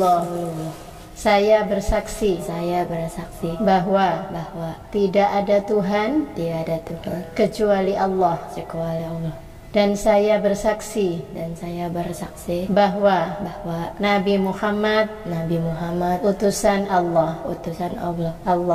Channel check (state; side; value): identical; both; correlation 1.00